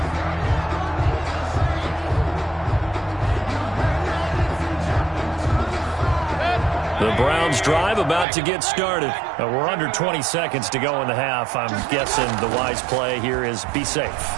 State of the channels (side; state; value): left; drops out; at 8.2 s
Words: The Browns drive about to get started. We're under 20 seconds to go in the half. I'm guessing the wise play here is be safe.